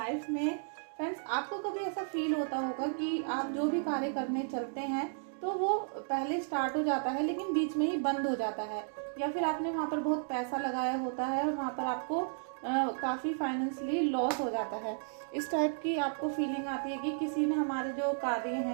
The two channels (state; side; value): silent; left; digital silence